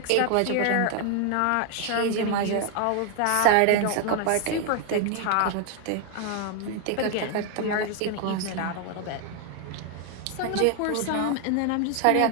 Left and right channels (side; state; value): both; different; correlation 0.00